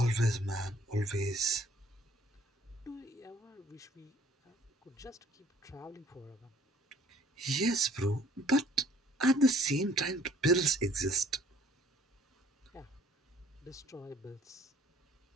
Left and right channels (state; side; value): normal; both; correlation 0.58